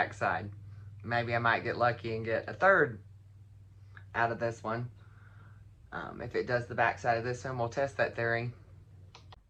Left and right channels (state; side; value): identical; both; correlation 1.00